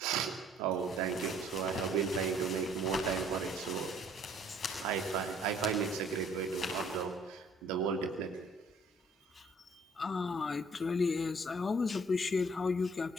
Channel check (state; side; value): normal; both; correlation 0.59